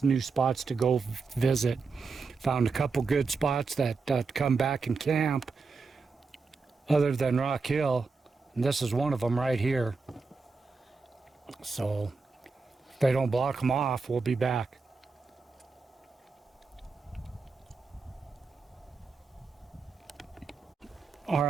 new spots to go visit. Found a couple good spots that come back and camp other than Rock Hill. And this is one of them right here. So if they don't block them off, we'll be back. All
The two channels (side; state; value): left; quieter; 4.5 dB